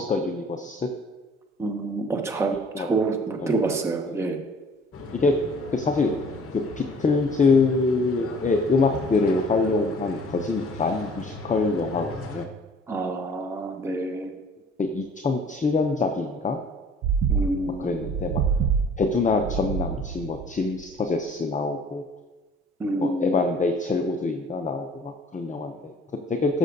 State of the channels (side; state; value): both; normal; correlation 0.52